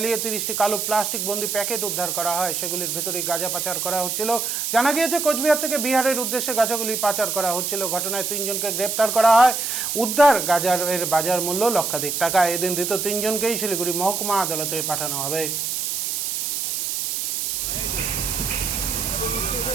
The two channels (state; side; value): noise; right; hiss, 1 dB below the sound